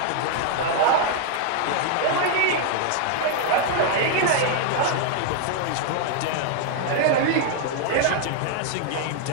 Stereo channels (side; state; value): both; different; correlation 0.00